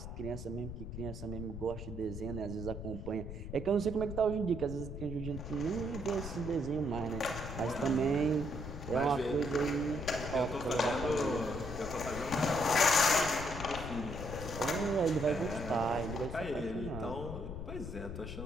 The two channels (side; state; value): left; noise; rumble, 8 dB below the sound